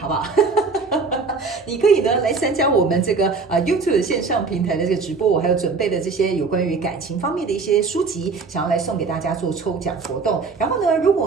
不好？你可以呢来参加我们这个YouTube 线上平台的这个直播，我还有准备的这些有关于感情方面的一些书籍，想要来送给大家做抽奖活动。然后呢，如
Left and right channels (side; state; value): left; quieter; 4.5 dB